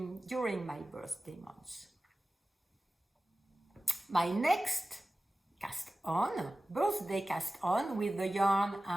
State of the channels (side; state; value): both; normal; correlation 0.96